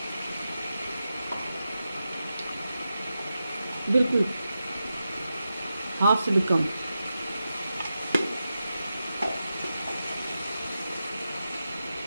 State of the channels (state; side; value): inverted; both; correlation -0.90